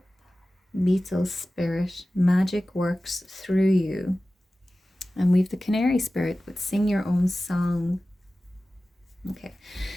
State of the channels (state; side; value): normal; both; correlation 0.96